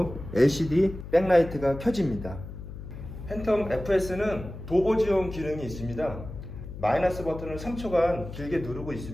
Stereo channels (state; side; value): noise; left; hum, 11 dB below the sound